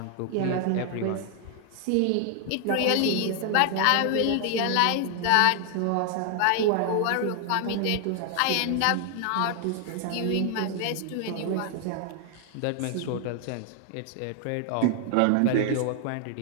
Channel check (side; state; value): both; different; correlation 0.00